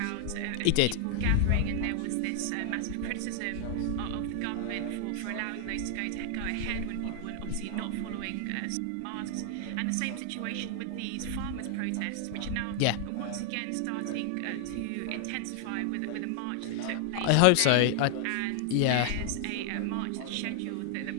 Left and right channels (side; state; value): both; different; correlation 0.00